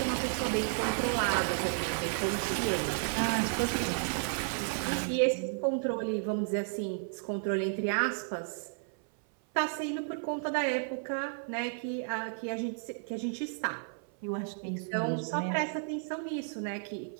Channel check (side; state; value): left; silent; 56 dB below the other